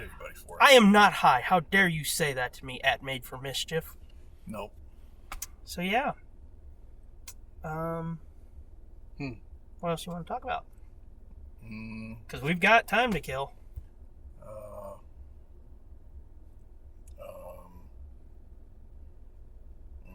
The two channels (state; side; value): identical; both; correlation 1.00